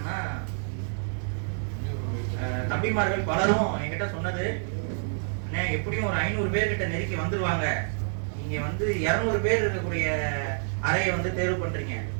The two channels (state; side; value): silent; left; digital silence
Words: தம்பிமார்கள் பலரும் என்கிட்ட சொன்னது, எப்படியும் ஒரு 500 பேர் கிட்ட நெருக்கி வந்துருவாங்க, நீங்க 200 பேர் இருக்கக்கூடிய அறையை தேர்வு பண்றீங்க,